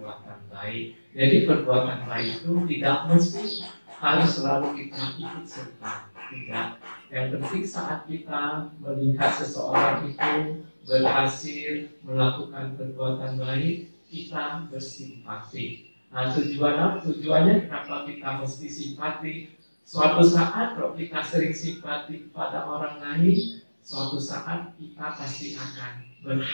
baik. Jadi perbuatan baik itu tidak mesti harus selalu kita ikut serta, tidak. Yang penting saat kita melihat seseorang itu berhasil melakukan perbuatan baik, kita bersimpati. Nah, tujuannya kenapa kita mesti simpati? Suatu saat kalau kita sering simpati kepada orang lain, suatu saat kita pasti akan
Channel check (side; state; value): both; inverted; correlation -1.00